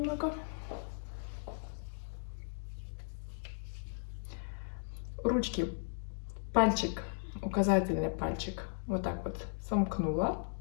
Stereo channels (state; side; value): silent; right; digital silence